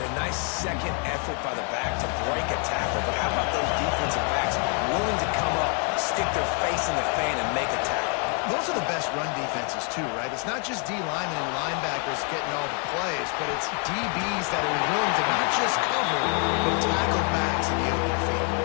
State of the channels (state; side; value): quieter; right; 37.6 dB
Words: a nice second effort by the back to break a tackle, but how about those defensive backs willing to come up, stick their face in the fan, and make a tackle? Those are the best run defenses, too, right? It's not just D linemen and linebackers getting all the plays, but it's DBs that are willing to not just cover, but tackle backs in the open field.